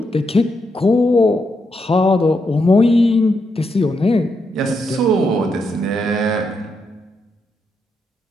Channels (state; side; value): normal; both; correlation 0.82